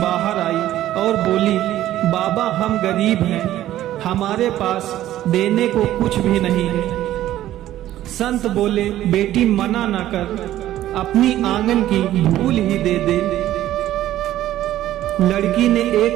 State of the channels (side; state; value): left; quieter; 13.5 dB